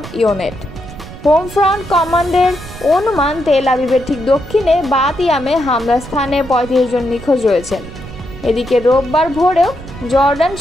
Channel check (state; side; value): noise; right; rumble, 14 dB below the sound